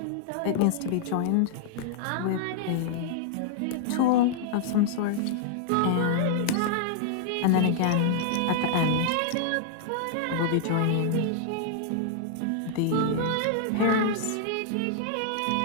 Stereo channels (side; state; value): both; different; correlation -0.01